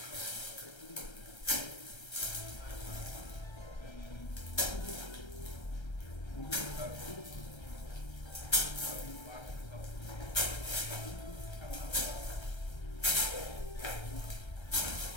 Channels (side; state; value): right; late; 1.3 ms